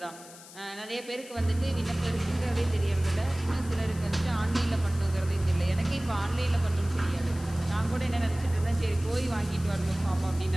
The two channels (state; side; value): noise; left; hiss, 18 dB below the sound